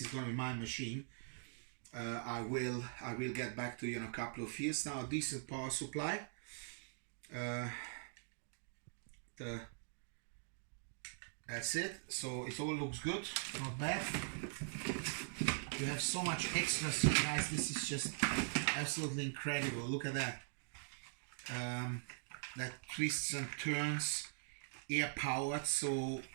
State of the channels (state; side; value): silent; left; digital silence